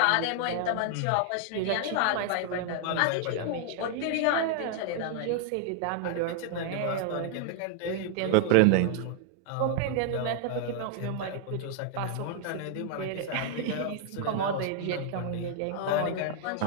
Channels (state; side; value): different; both; correlation 0.00